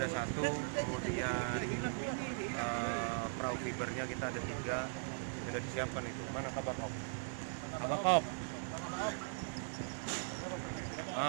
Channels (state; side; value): silent; left; digital silence